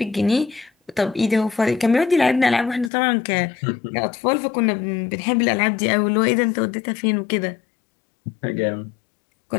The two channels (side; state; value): right; drops out; at 2.9 s